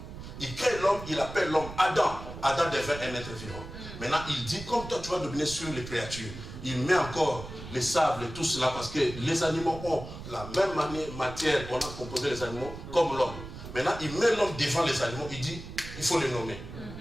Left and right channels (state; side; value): noise; right; rumble, 11 dB below the sound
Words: Il crée l'homme, il appelle l'homme Adam. Adam devient un être vivant. Maintenant, il dit, comme toi tu vas dominer sur les créatures, il met encore les sables et tout cela parce que les animaux ont la même matière qu'on a composé les animaux comme l'homme. Maintenant, il met l'homme devant les animaux, il dit, il faut les nommer.